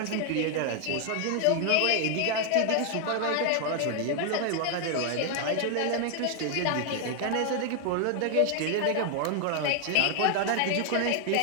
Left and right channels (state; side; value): different; both; correlation 0.00